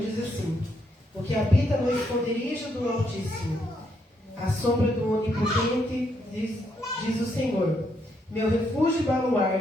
diz assim: o que habita no esconderijo do Altíssimo, à sombra do Onipotente, diz o Senhor, meu refúgio e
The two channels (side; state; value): both; normal; correlation 0.76